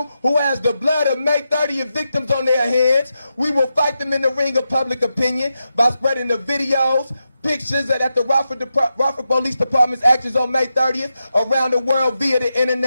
who has the blood of May 30th victims on their hands. We will fight them in the ring of public opinion by spreading the videos, pictures that the Rockford Police Department's actions on May 30th around the world via the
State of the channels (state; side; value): inverted; both; correlation -0.88